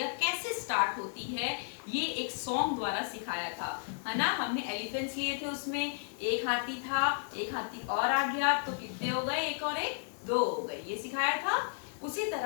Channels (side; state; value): right; silent; digital silence